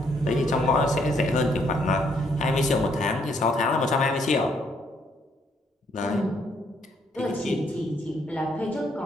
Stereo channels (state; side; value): normal; both; correlation 0.71